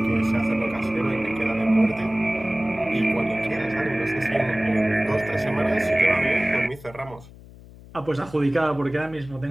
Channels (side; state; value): left; noise; hum, 20 dB below the sound